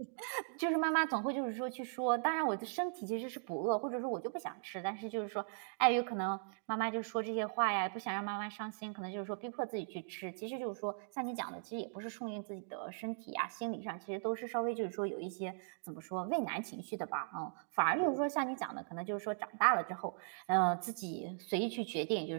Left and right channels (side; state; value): left; silent; digital silence